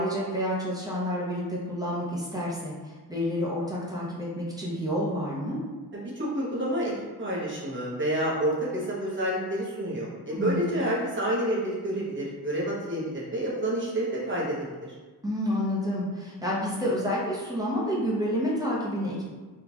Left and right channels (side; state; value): both; normal; correlation 0.26